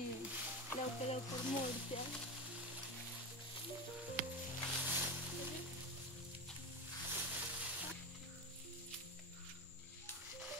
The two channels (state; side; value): normal; both; correlation 0.20